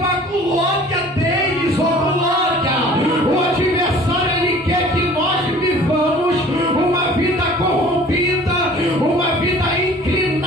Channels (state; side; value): normal; both; correlation 0.48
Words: a glória deles, ó glória. O adversário, ele quer que nós vivamos uma vida corrompida, uma vida